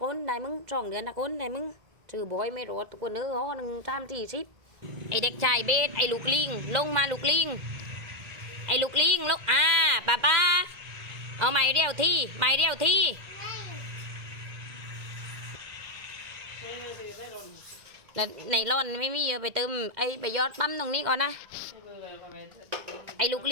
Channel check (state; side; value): late; left; 2.1 ms